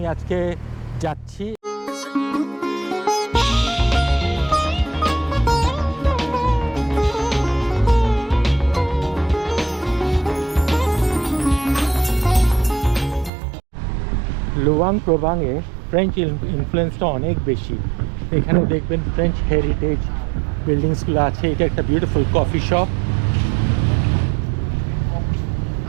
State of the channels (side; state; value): left; drops out; at 13.3 s